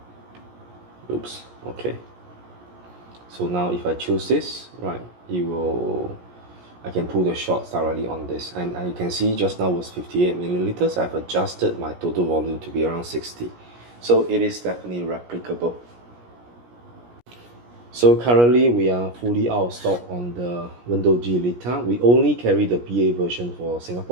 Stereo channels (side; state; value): left; late; 17 ms